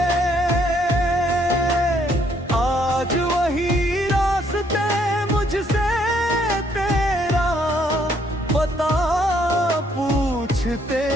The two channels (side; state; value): both; normal; correlation 0.68